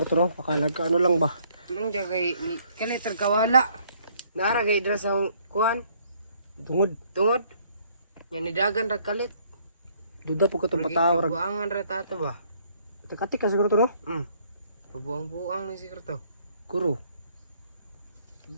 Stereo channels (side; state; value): both; inverted; correlation -0.64